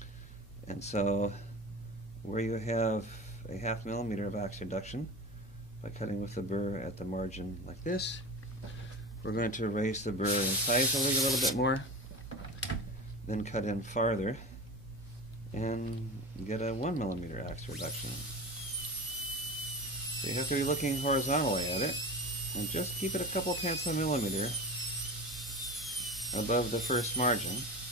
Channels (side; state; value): both; normal; correlation 0.29